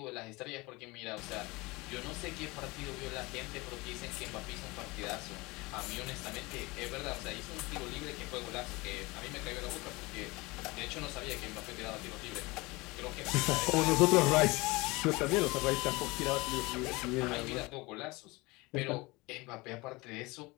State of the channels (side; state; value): right; quieter; 23.5 dB